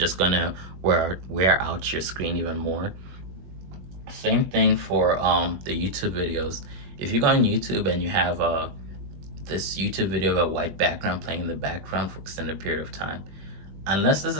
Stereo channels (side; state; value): left; late; 21 ms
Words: gonna wear out your screen even more. Same thing for the YouTube videos. If you go on YouTube and you have this YouTube video of a white background playing in the background for extended period of time, unless this